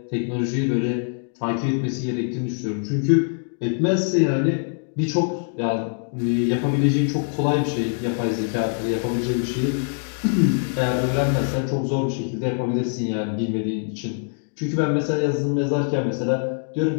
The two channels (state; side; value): silent; right; 55 dB below the other